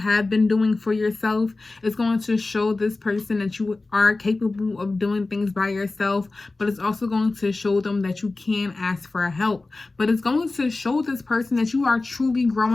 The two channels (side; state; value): right; quieter; 3.3 dB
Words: been doing for yourself. It's going to show this person that you are capable of doing things by yourself, but it's also going to show them that you can ask for help. But it's going to show this person that you are truly